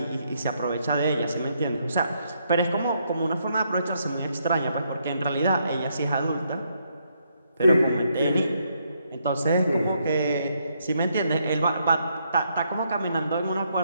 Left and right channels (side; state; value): both; inverted; correlation -0.75